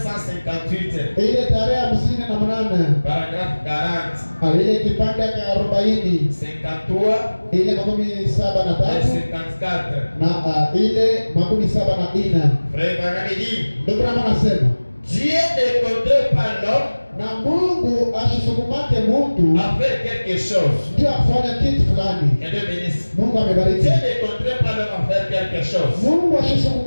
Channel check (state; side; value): inverted; both; correlation -1.00